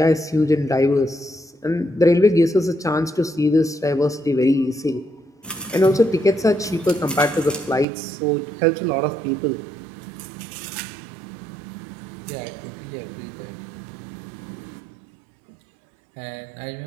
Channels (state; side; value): drops out; left; at 7.9 s